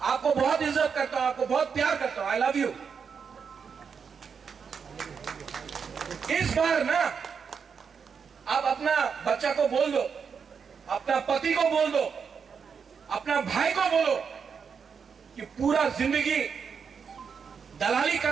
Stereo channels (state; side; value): quieter; left; 6.3 dB